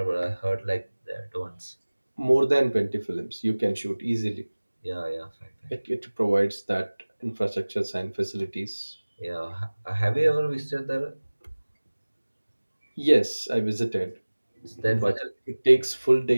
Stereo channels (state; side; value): inverted; both; correlation -1.00